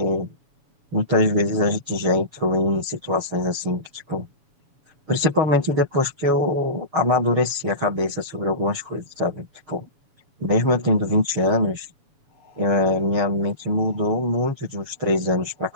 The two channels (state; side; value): late; left; 7.1 ms